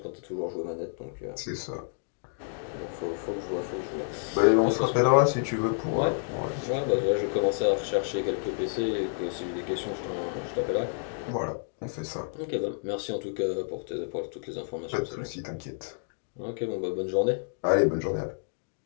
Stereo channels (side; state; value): right; silent; digital silence